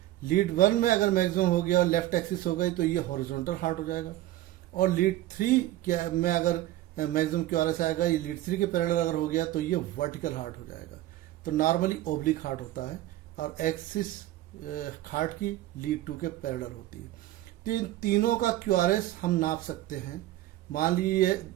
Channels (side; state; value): left; quieter; 15.1 dB